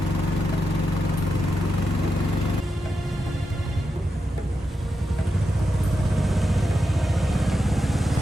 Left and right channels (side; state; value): both; normal; correlation 0.87